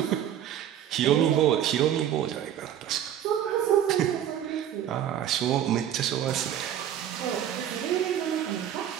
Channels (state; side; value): quieter; left; 10.4 dB